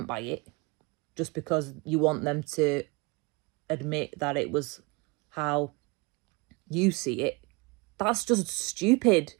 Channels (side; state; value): left; quieter; 27.1 dB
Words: by it just because you want them to admit that it was how you see it. That's just stupid.